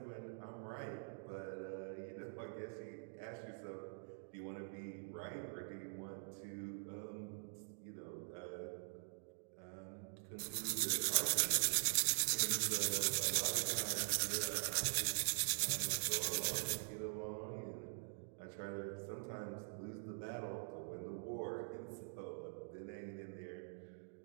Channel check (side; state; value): left; silent; digital silence